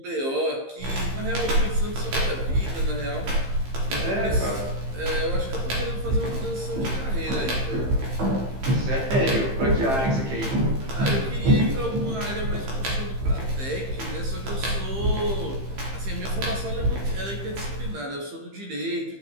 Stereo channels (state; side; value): late; left; 15 ms